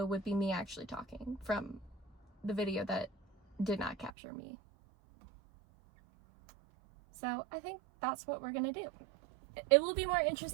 would be me actually talking from the video that did not capture me. So I think that's what we're gonna do. It will be more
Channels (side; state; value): left; drops out; at 4.1 s